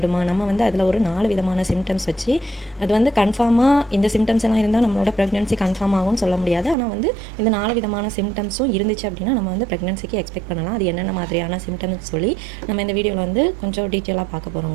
நம்ம வந்து அதில் ஒரு 4 விதமான சிம்டம்ஸ் வச்சு அது வந்து கன்ஃபார்மாக இந்த சிம்டம்ஸ் எல்லாம் இருந்தால் நம்மளோட ப்ரெக்னென்சி கன்ஃபார்ம் ஆகும்னு சொல்ல முடியாது. ஆனால் வந்து இந்த 4 விதமான சிம்டம்ஸும் இருந்துச்சு அப்படின்னா நம்ம வந்து ப்ரெக்னென்சிக்கு எக்ஸ்பெக்ட் பண்ணலாம். அது என்னென்ன மாதிரியான சிம்டம்ஸ் சொல்லி நம்ம இந்த வீடியோவில் வந்து கொஞ்சம் டீட்டெயிலாக பார்க்க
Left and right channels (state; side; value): drops out; left; at 6.8 s